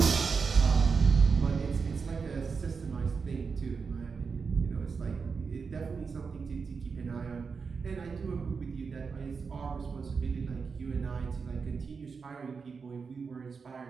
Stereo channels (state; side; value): quieter; left; 5.3 dB